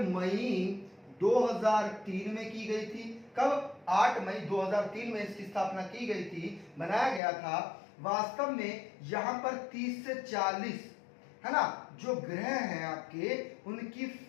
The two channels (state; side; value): drops out; right; at 7.2 s